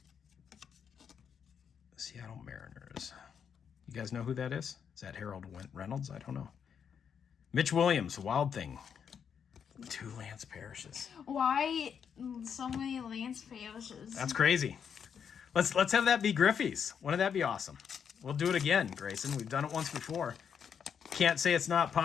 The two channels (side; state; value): right; quieter; 7.4 dB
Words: Seattle Mariners. You guys know who that is? Is that Harold Reynolds? I don't know. Mitch Williams, Wild Thing. 2 Lance Parrishes. Why so many Lance Parrishes? That's crazy. Let's have that be Griffey's. Wouldn't that be awesome? We'll do it again, Grayson. We've done it once before. Can't say it's not